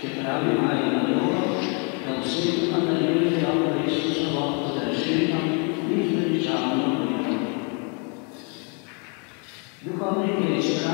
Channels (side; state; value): right; quieter; 35.5 dB